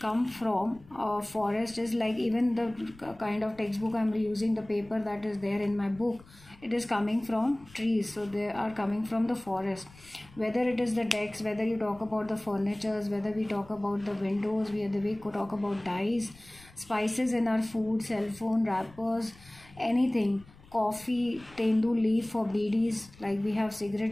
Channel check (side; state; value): left; noise; rumble, 24 dB below the sound